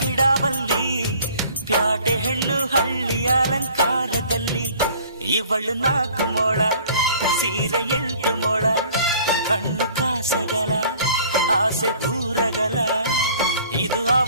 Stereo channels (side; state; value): both; inverted; correlation -0.52